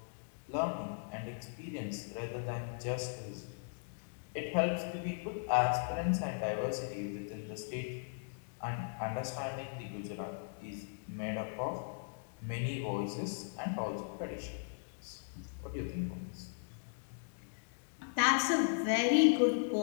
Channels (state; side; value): silent; right; digital silence